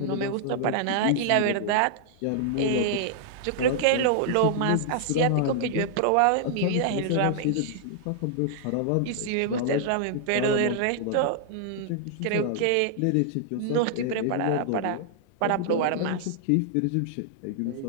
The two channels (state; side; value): different; both; correlation -0.01